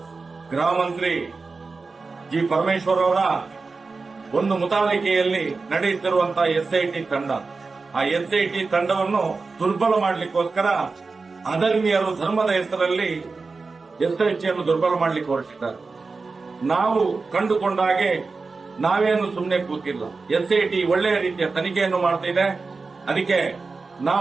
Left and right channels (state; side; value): quieter; left; 4.2 dB